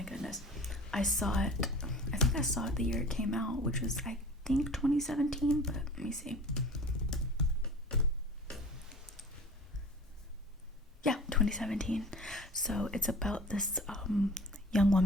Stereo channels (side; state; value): both; normal; correlation 0.41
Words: goodness. I think I saw it the year it came out, which was, I think, 2017, but let me see. Yeah, 2017. So it's about this young